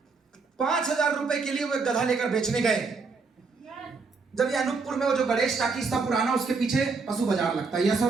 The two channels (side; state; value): left; quieter; 4.5 dB